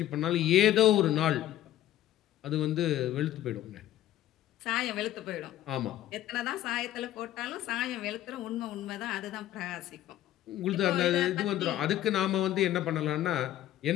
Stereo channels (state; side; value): quieter; right; 13.1 dB